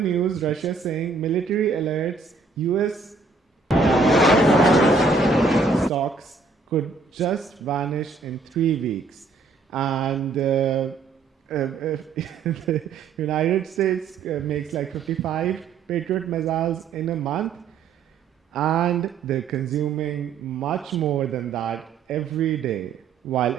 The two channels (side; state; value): left; quieter; 4.3 dB